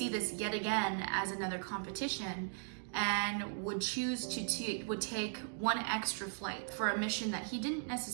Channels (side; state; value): left; silent; digital silence